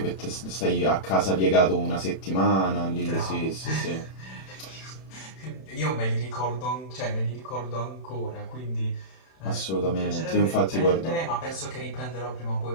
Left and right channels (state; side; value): late; right; 31 ms